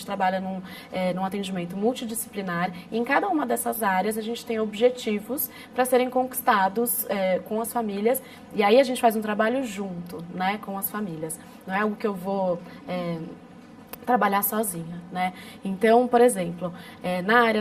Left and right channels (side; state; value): both; identical; correlation 1.00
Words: trabalha num atendimento multidisciplinar, e em cada uma dessas áreas a gente tem objetivos para serem conquistados com as famílias, e aí a gente faz um trabalho junto, né, com as famílias. Não é algo que eu vou trabalhar sozinha, né? Então, por exemplo, na área